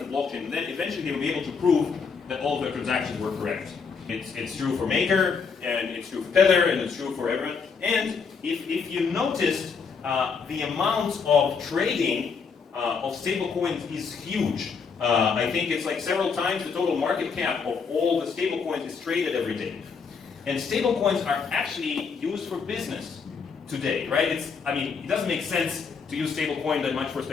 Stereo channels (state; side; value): quieter; right; 5.6 dB